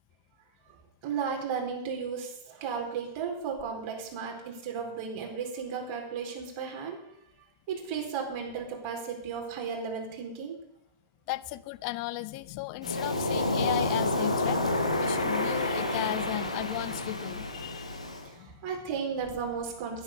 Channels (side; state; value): both; inverted; correlation -0.40